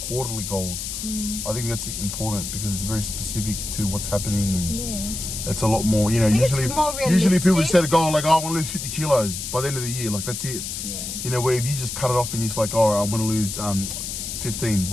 goals. I think that's important because it's very specific to what's happening, and it's a lot more. You know, usually people set a goal like, oh, I want to lose 50 kilos by the end of the year. Like that's it. Yeah. You know, where if you just cut it off and you're just like, oh, I'm going to lose 15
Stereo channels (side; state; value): left; noise; hiss, 6 dB below the sound